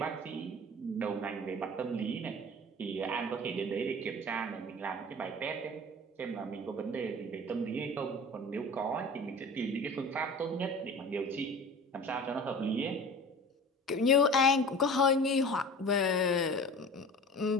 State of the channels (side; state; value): both; normal; correlation 0.39